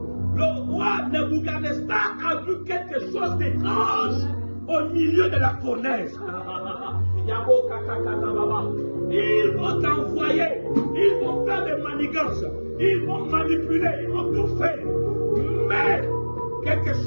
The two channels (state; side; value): inverted; both; correlation -1.00